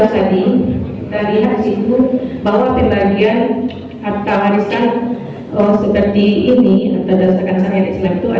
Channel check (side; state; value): both; identical; correlation 1.00